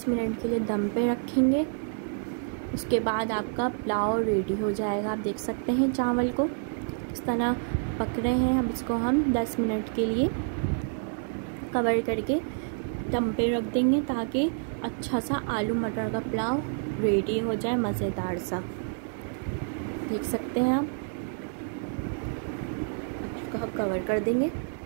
मिनट के लिए दम पे रखेंगे। उसके बाद आपका पुलाव रेडी हो जाएगा। आप देख सकते हैं चावल को इस तरह पक रहे हैं। अब इसको हम 10 मिनट के लिए कवर करके दम पे रख देंगे ताकि अच्छा सा आलू मटर का पुलाव रेडी हो जाए, मज़ेदार सा। देख सकते हैं आप। इसको हम कवर कर देंगे।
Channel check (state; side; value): silent; left; 59 dB below the other